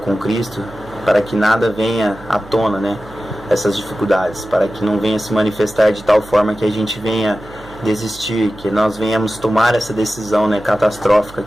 Cristo, para que nada venha à tona, né, essas dificuldades, para que não venha se manifestar de tal forma que a gente venha desistir, que nós venhamos tomar essa decisão, né, catastrófica,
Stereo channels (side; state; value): right; noise; hum, 19 dB below the sound